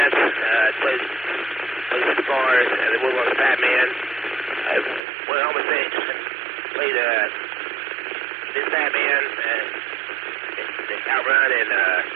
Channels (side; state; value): left; drops out; at 5.0 s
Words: played the bars, and then went on the Fat Man. I went home and played this Fat Man, Outrun, and